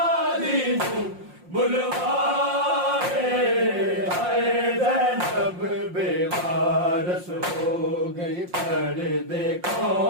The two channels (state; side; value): late; left; 5.6 ms